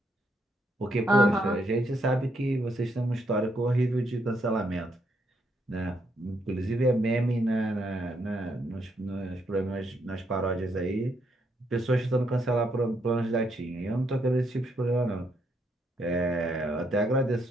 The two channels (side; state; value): both; normal; correlation 0.75